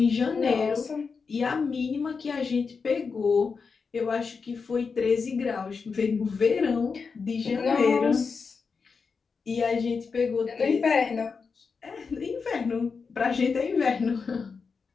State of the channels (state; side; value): quieter; right; 5.2 dB